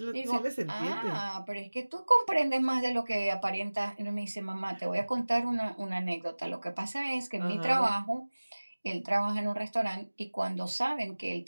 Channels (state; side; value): inverted; both; correlation -1.00